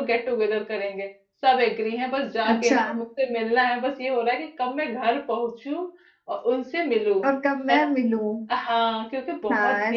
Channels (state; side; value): identical; both; correlation 1.00